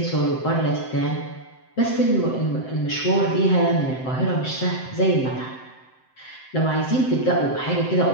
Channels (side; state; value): right; late; 7.7 ms